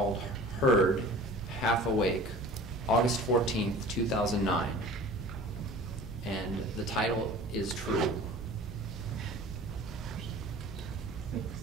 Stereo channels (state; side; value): normal; both; correlation 0.42